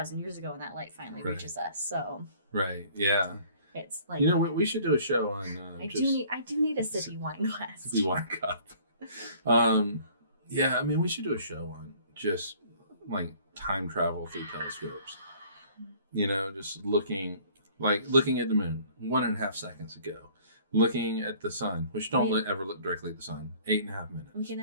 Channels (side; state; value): both; inverted; correlation -0.54